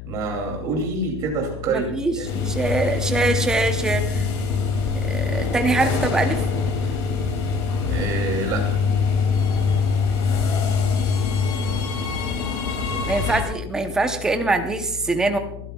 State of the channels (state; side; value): noise; left; hum, 13 dB below the sound